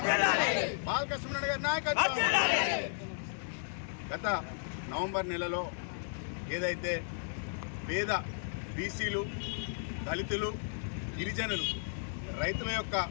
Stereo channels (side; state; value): right; silent; digital silence